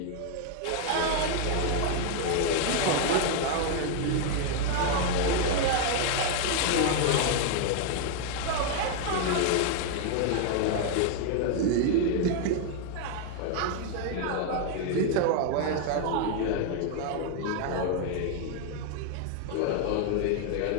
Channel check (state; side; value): different; both; correlation 0.00